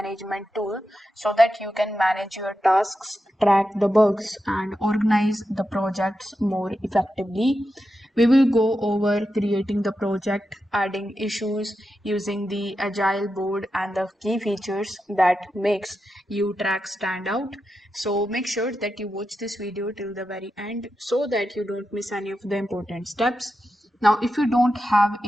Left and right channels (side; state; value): both; normal; correlation 0.89